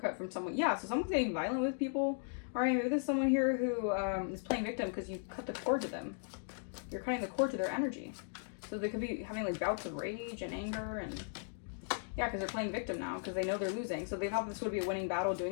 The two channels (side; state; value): right; silent; digital silence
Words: from someone. Yeah, so someone's getting violent with people. All right, maybe there's someone here who is playing victim because you cut the cord to them. You're cutting the cord to their energy. So they could be having like bouts of rage and anger and yeah, because they're playing victim now because they know they're losing. So they thought this would be a winning battle